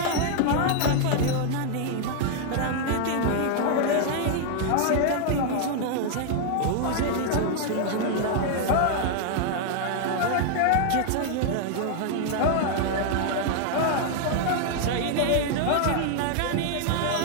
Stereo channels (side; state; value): both; different; correlation 0.00